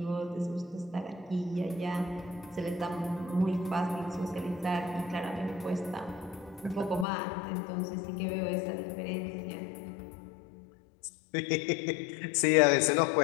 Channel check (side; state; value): right; drops out; at 7.1 s